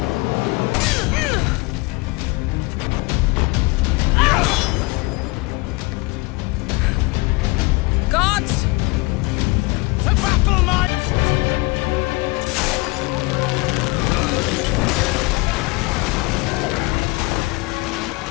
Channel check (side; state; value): right; quieter; 25.8 dB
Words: Gods! To battle, man!